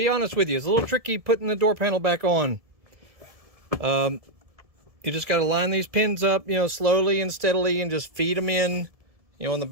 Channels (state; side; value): late; left; 1.7 ms